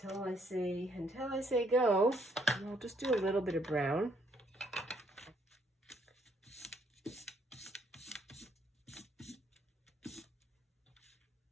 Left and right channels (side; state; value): both; normal; correlation 0.68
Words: I say go, I'll just do a little bit of brown.